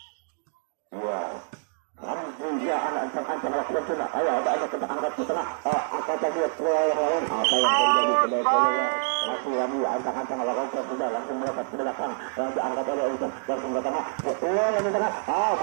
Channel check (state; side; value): silent; left; digital silence